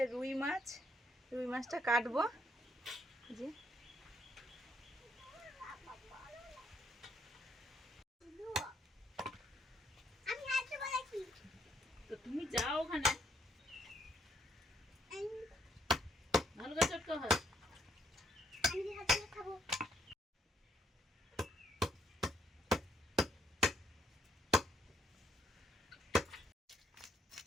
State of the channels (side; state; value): both; normal; correlation 0.71